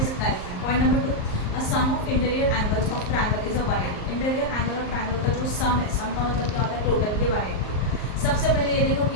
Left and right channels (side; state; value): right; late; 38 ms